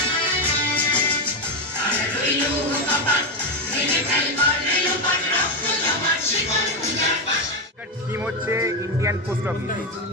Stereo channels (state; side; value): normal; both; correlation 0.10